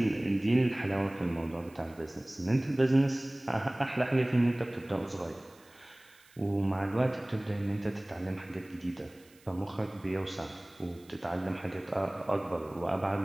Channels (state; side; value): noise; right; hiss, 28 dB below the sound